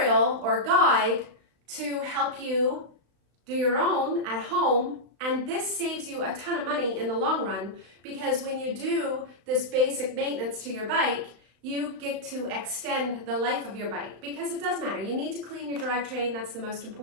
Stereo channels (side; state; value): left; late; 35 ms